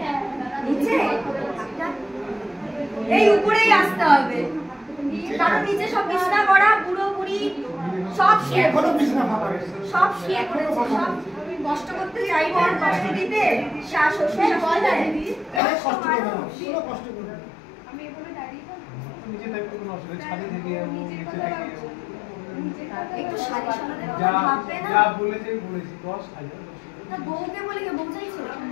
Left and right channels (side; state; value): right; drops out; at 15.6 s